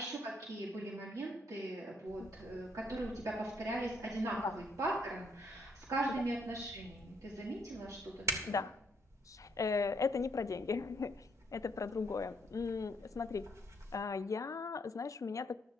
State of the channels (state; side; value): normal; both; correlation 0.70